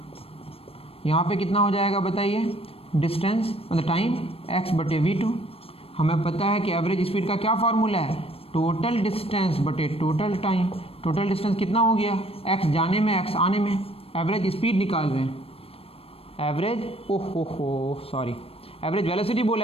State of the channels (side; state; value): right; late; 0.28 ms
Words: यहाँ पे कितना हो जाएगा बताइए डिस्टेंस मतलब टाइम x बटे v2। हमें पता है कि एवरेज स्पीड का क्या फार्मूला है, टोटल डिस्टेंस बटे टोटल टाइम, टोटल डिस्टेंस कितना हो गया x जाने में x आने में, एवरेज स्पीड निकाल रहे हैं, एवरेज एवरेज वेलोसिटी